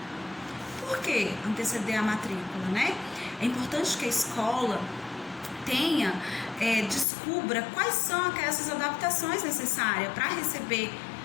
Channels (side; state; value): right; drops out; at 7.1 s